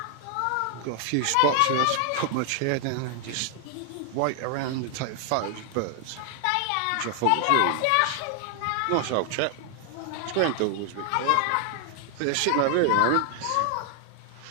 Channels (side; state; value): both; different; correlation 0.00